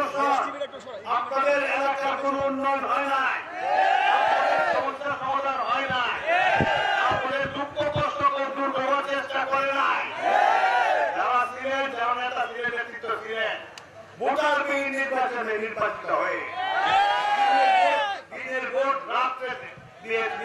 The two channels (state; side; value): identical; both; correlation 1.00